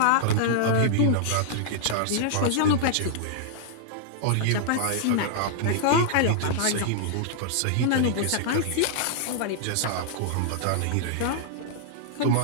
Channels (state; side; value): different; both; correlation -0.01